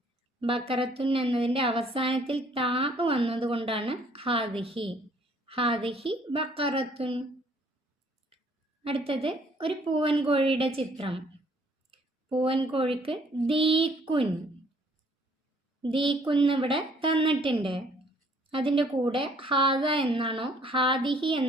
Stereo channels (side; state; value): both; normal; correlation 0.61